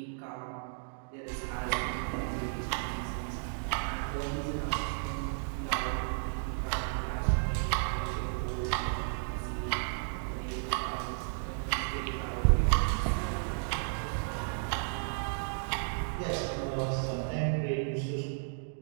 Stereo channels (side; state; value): left; silent; digital silence